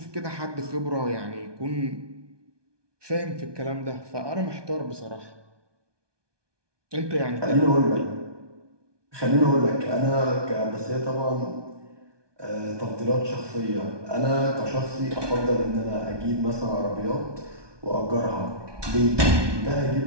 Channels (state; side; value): late; left; 1.2 ms